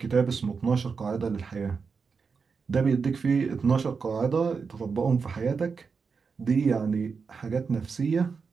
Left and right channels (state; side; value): quieter; left; 5.3 dB